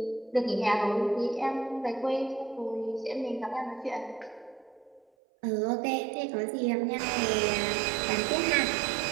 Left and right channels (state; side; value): drops out; left; at 5.1 s